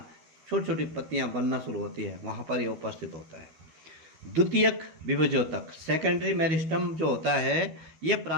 छोटी छोटी पत्तियाँ बनना शुरू होती है वहाँ पर यह उपस्थित होता है। द्वितीयक विभज्योतक सेकेंडरी मेरिस्टम जो होता है ये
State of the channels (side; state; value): left; late; 13 ms